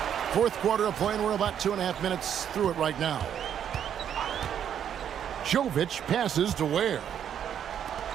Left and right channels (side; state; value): left; quieter; 9.2 dB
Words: Fourth quarter of play, and we're about 2.5 minutes through it right now. Jovic passes to Ware.